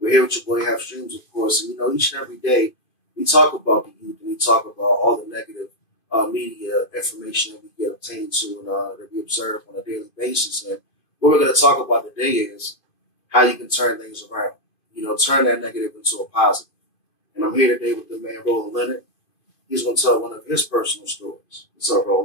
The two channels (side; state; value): right; late; 2.5 ms